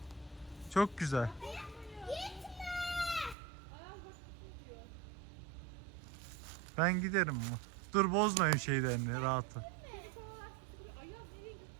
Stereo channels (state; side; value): drops out; left; at 3.4 s